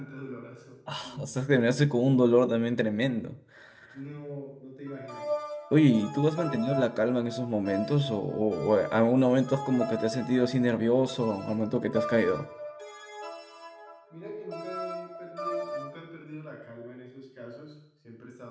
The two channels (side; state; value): both; identical; correlation 1.00